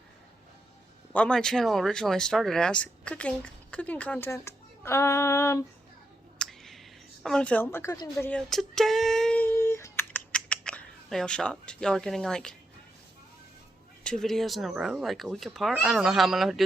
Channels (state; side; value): normal; both; correlation 0.83